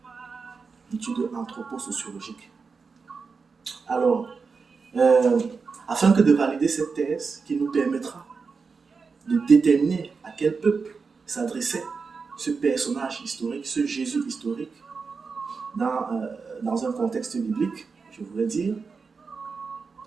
une étude anthroposociologique. Alors, afin que de valider cette thèse qui nous permettra de déterminer à quel peuple s'adressait ce personnage historique, ce Jésus historique, dans un contexte biblique, je voulais dire,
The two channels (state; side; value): quieter; left; 4.9 dB